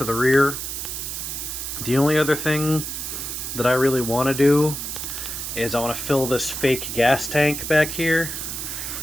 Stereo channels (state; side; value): noise; right; hiss, 5 dB below the sound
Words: the rear. The only other thing that I really want to do is I want to fill this fake gas tank back here.